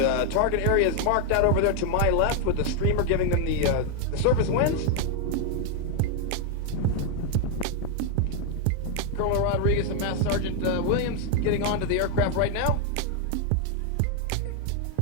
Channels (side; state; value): both; different; correlation 0.00